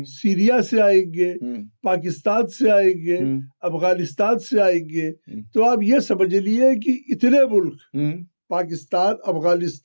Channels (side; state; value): both; inverted; correlation -1.00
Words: सीरिया से आएंगे, पाकिस्तान से आएंगे, अफगानिस्तान से आएंगे। तो आप ये समझ लिए कि इतने मुल्क, Pakistan,